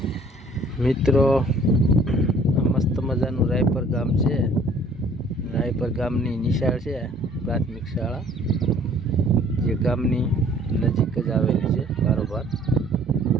મિત્રો મસ્ત મજાનું રાયપર ગામ છે. રાયપર ગામની નિશાળ છે, પ્રાથમિક શાળા, જે ગામની નજીક જ આવેલી છે. બારોબાર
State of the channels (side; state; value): both; normal; correlation 0.56